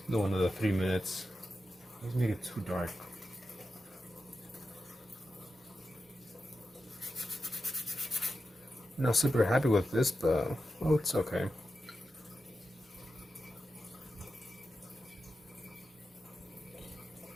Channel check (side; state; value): both; normal; correlation 0.90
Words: The one of the 3 minutes. Let's make it too dark. Not super happy with this, but oh, it's okay.